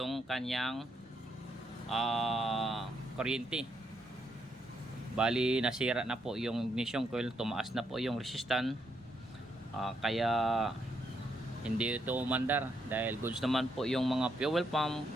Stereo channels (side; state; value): both; normal; correlation 0.77